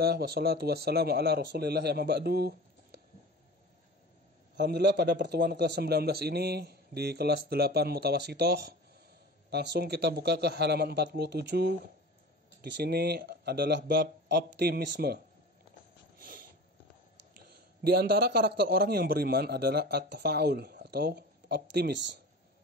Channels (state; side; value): normal; both; correlation 0.36